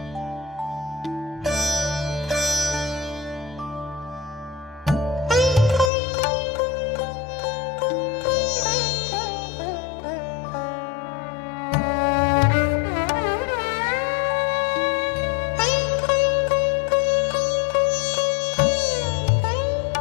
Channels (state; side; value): drops out; right; at 5.9 s